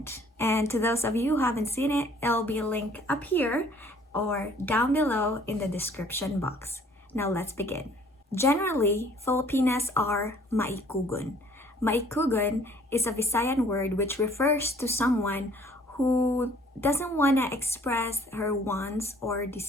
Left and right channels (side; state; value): both; normal; correlation 0.57